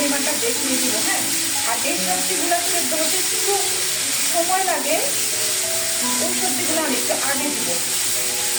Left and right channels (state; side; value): identical; both; correlation 1.00